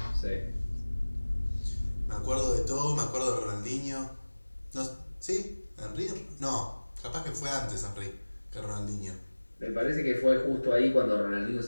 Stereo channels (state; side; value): inverted; both; correlation -1.00